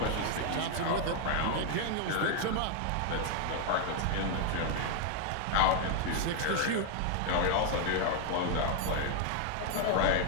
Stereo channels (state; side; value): different; both; correlation 0.00